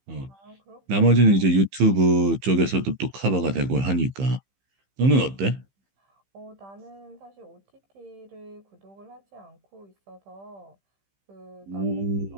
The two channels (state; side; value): late; left; 15 ms